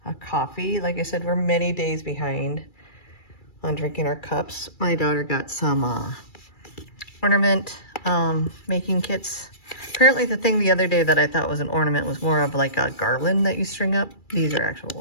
a coffee. Like I said, we're many days behind on drinking our cups. My daughter got some ornament making kits. Apparently the thing the other day that I thought was an ornament was more of like a garland that you string up. These are actual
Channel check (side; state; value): right; late; 2.3 ms